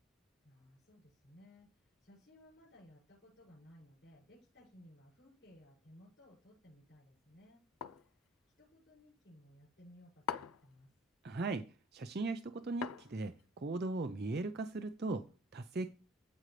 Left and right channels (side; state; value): both; normal; correlation 0.53